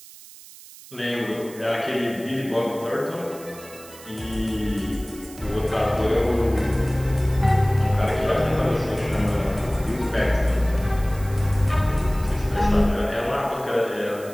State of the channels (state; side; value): noise; right; hiss, 19 dB below the sound